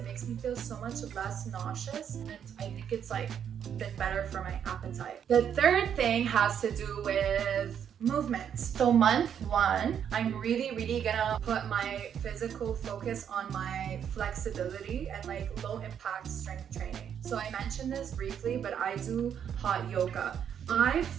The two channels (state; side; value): quieter; left; 8.5 dB